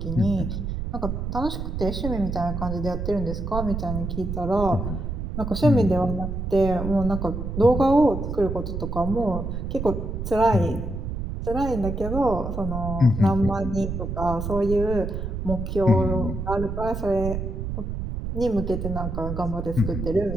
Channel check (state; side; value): noise; right; rumble, 4 dB below the sound